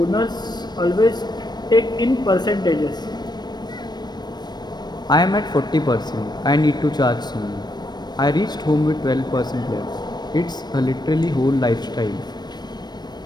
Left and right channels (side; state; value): right; late; 0.20 ms